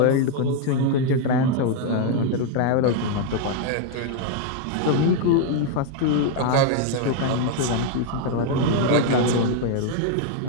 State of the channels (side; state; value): both; different; correlation 0.00